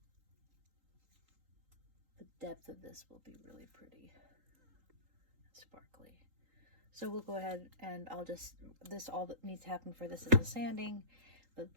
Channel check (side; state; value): left; late; 3.8 ms